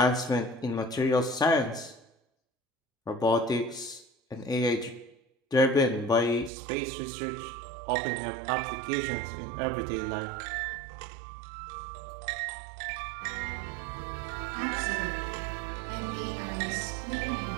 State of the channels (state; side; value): drops out; left; at 6.5 s